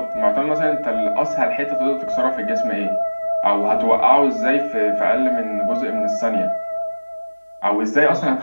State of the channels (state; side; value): inverted; both; correlation -1.00